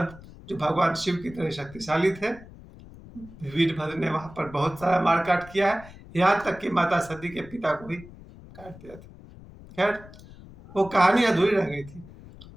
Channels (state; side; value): noise; left; rumble, 19 dB below the sound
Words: जो भगवान शिव की तरह शक्तिशाली थे, वीरभद्र ने वहां पर बहुत सारा मारकाट किया है, यहाँ तक कि माता सती के पिता को भी काट दिया था। खैर, वो कहानी अधूरी रह गई थी।